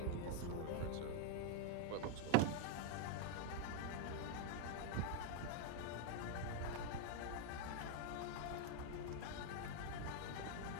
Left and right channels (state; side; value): different; both; correlation 0.00